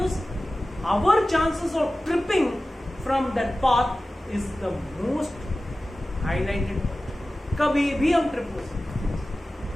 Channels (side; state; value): both; normal; correlation 0.96